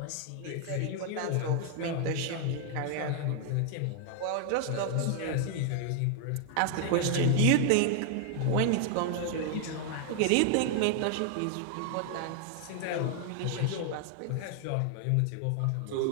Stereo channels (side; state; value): both; different; correlation 0.00